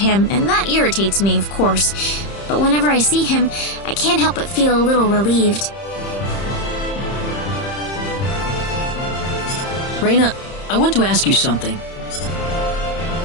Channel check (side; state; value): right; late; 30 ms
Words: and that irritates me, of course. But whenever I see him, I can't help but feel a little relieved. Reyna, I want to ask you something.